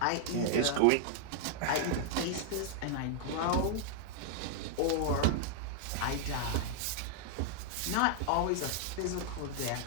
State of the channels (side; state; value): both; different; correlation -0.01